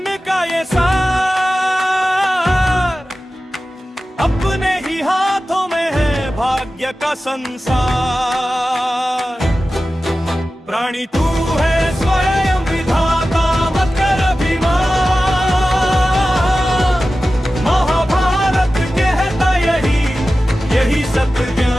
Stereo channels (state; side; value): normal; both; correlation 0.95